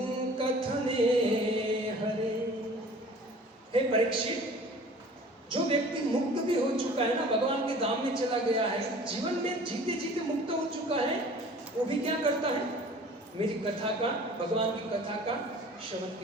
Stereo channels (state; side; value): normal; both; correlation 0.46